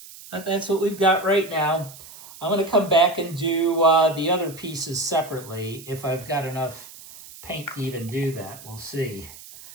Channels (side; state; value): right; noise; hiss, 17 dB below the sound